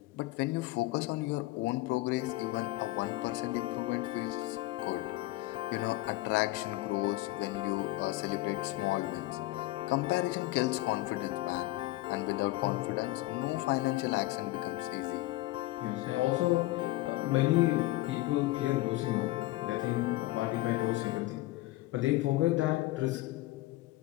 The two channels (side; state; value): right; quieter; 18.6 dB